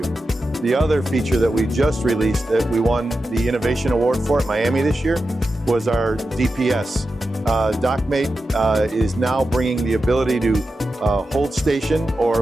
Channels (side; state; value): both; normal; correlation 0.91